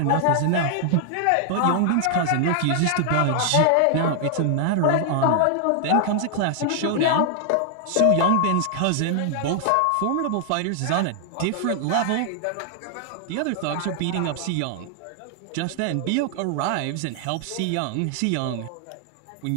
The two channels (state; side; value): different; both; correlation 0.00